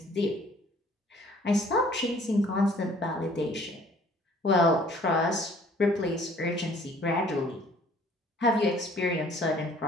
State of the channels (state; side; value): normal; both; correlation 0.56